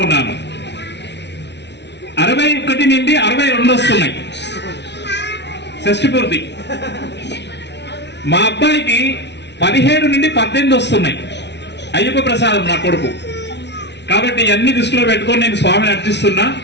ఉన్నాను. 61 నుండి 62 వస్తున్నాయి షష్ఠి పూర్తి. మా అబ్బాయికి 17 నుండి 18 వస్తున్నాయి. అయ్యప్ప ప్రసాదం నా కొడుకు. కాబట్టి అన్ని దృష్టిలో పెట్టుకొని నేను స్వామిని అర్చిస్తున్నా,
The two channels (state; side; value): late; right; 0.50 ms